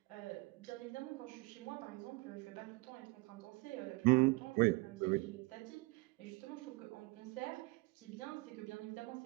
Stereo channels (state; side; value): quieter; left; 24.7 dB